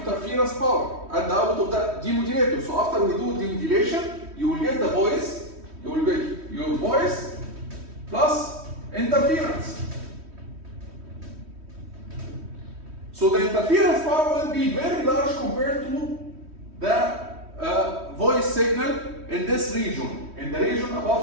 power at the output of the demodulator. So after we do demodulation, you will get the voice, you will get your voice plus interference. So the interference power will be very large compared to the voice signal in this region, in the region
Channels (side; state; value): left; late; 3.1 ms